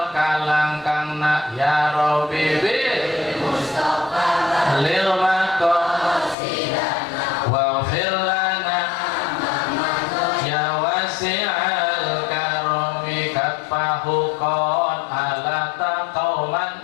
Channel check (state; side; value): drops out; right; at 6.4 s